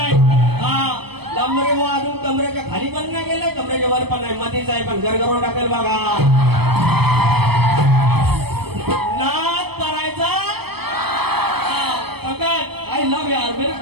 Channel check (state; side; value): late; left; 0.97 ms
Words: कमरेच्या वर पण नाही, मधीच आहे पण गरगरून टाकेल बघा. नाद करायचा फकत आई लव यार मेरे